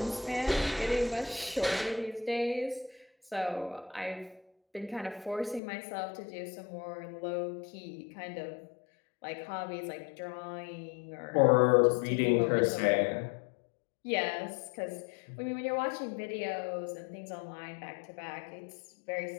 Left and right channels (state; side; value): drops out; right; at 5.6 s